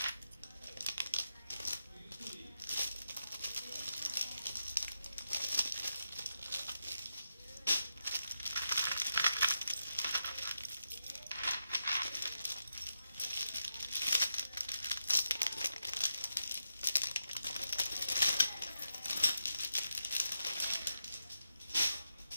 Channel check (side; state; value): both; inverted; correlation -0.85